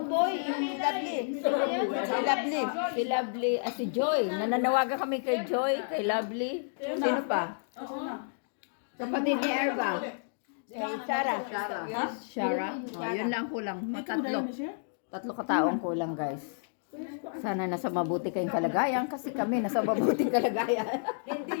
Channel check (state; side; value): silent; right; digital silence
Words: Lovely. Si Lovely. Si Lovely. Si Joy. Nananawagan kami kay Joy, kay Lovely. Sino pa? Kapatid ni Erba. Shara. Shara. Yun lang kulang. Tatlo. Tatlo kataong kulang, guys. Sana nasa mabuti kayong kalagayan kasi kami nasa mabuting kalagayan.